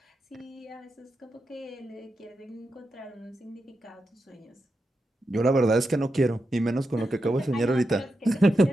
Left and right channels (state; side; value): normal; both; correlation 0.87